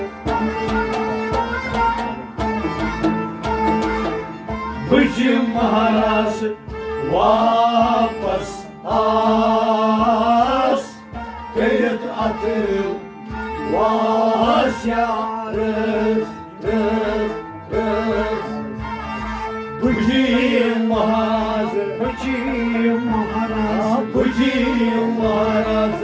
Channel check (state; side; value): identical; both; correlation 1.00